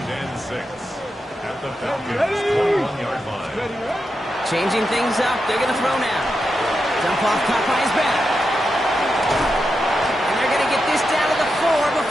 and 6 at the Falcons' 21-yard line. Changing things up. They're going to throw now. Dump off caught by his back. And they're going to get this down to the 4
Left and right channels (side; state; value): both; normal; correlation 0.87